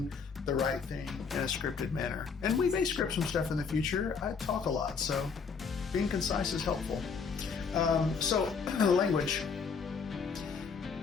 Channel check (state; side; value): quieter; right; 5.6 dB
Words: the right thing in a scripted manner. And we may script some stuff in the future. I talk a lot, so being concise is helpful. So language.